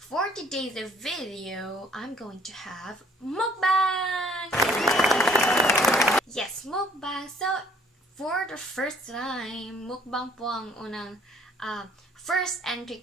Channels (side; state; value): both; normal; correlation 0.58